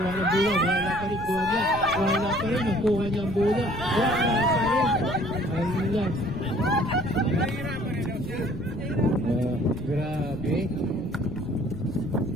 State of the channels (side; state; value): left; noise; rumble, 15 dB below the sound